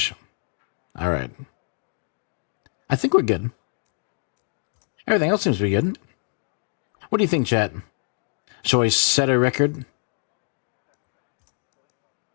All right. I think we're good. Everything else seems to be good. What do you think, chat? Shall I set a record?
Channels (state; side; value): silent; right; 55 dB below the other